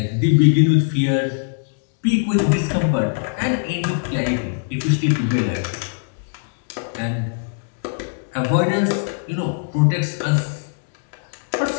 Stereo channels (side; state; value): right; silent; digital silence